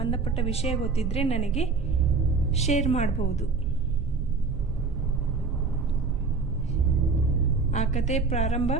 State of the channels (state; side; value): quieter; left; 4.5 dB